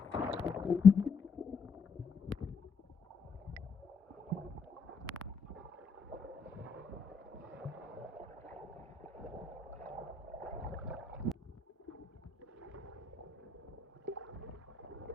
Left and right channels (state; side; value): quieter; right; 5.1 dB